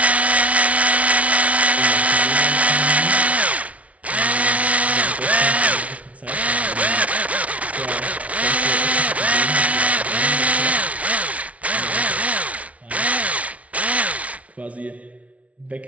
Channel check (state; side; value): late; left; 0.066 ms